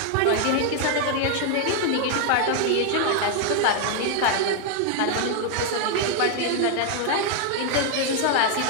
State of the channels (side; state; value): both; different; correlation 0.00